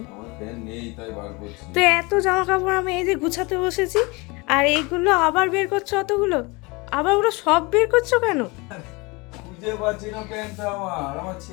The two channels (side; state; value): right; quieter; 26.2 dB